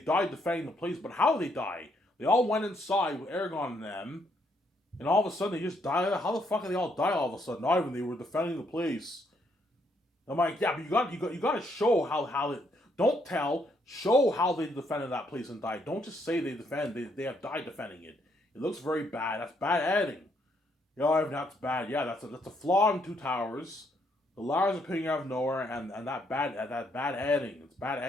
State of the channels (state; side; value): normal; both; correlation 0.73